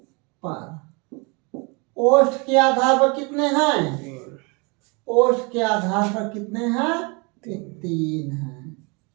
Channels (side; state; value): left; quieter; 30.2 dB